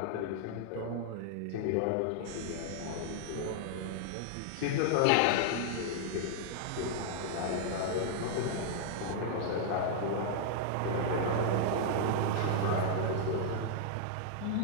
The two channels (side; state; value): both; different; correlation -0.01